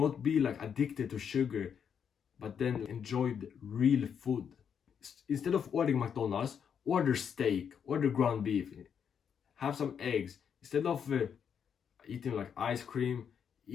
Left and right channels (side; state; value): right; quieter; 7.6 dB